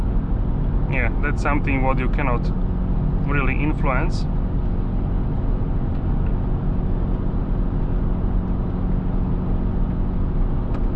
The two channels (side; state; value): both; identical; correlation 1.00